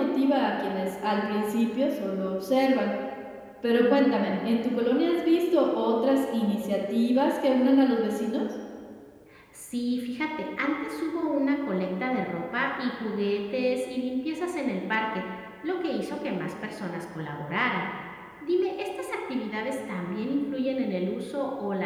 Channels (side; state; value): both; identical; correlation 1.00